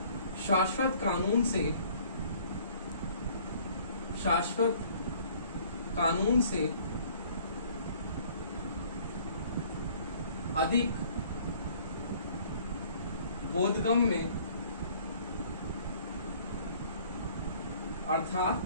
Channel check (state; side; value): inverted; both; correlation -0.56